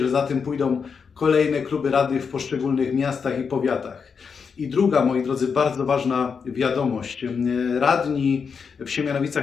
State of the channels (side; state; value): right; quieter; 6.0 dB